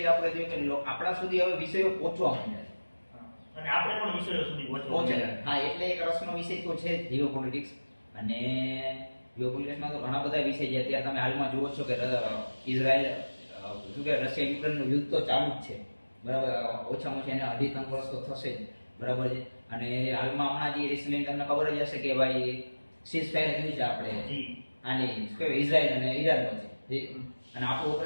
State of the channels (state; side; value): inverted; both; correlation -1.00